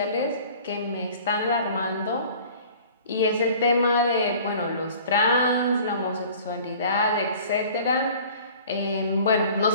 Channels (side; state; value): both; inverted; correlation -0.47